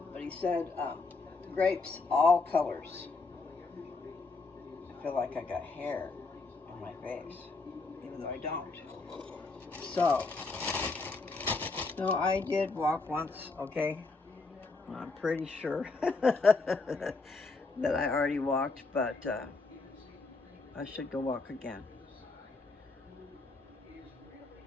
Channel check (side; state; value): right; quieter; 3.8 dB